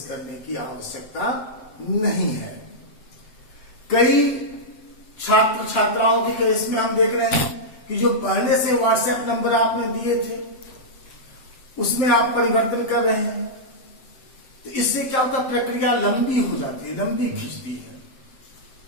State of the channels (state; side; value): late; right; 7.7 ms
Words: करने की आवश्यकता नहीं है। कई छात्र छात्राओं के केस में हम देख रहे हैं कि जो पहले से व्हाट्सएप नंबर आपने दिए थे उसमें आप परिवर्तन कर रहे हैं, तो इससे क्या होता है, प्रक्रिया लंबी हो जाती है, लंबी खिंचती है।